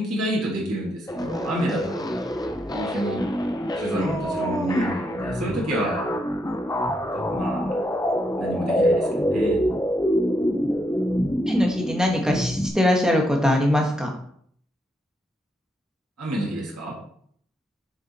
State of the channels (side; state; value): both; normal; correlation 0.79